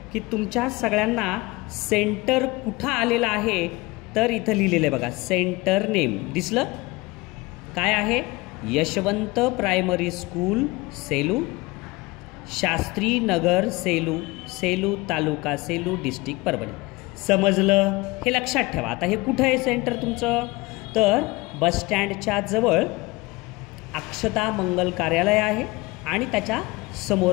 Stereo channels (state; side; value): quieter; right; 22.8 dB